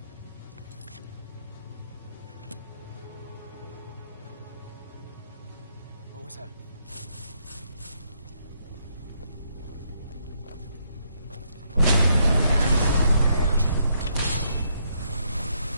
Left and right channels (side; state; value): both; inverted; correlation -0.75